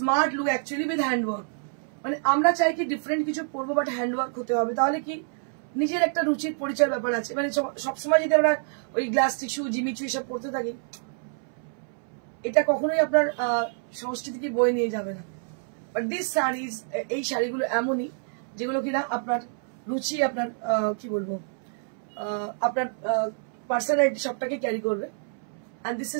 look actually with handwork. মানে আমরা চাই কি ডিফারেন্ট কিছু পরবো, বাট হ্যান্ডওয়ার্ক হতে হবে, তাহলে কি নিজের একটা রুচির পরিচয় ব্যাপার আছে। মানে সবসময় যদি আমরা ওই গ্লাস টিস্যু, জিমিচু এসব পড়তে থাকি, এটা কখনোই আপনার সংস্কৃতিকে বয়ে নিয়ে যাবে না। বাট দিস শাড়িজ, এই শাড়িগুলো এমনই যেগুলো কিনা আপনার রুচি, আপনার কি বলবো, আপনার পার্সোনালিটি সবটাকে ক্যারি করবে। And this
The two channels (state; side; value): silent; left; 60 dB below the other